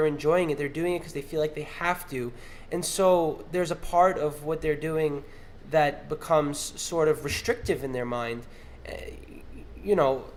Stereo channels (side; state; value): both; identical; correlation 1.00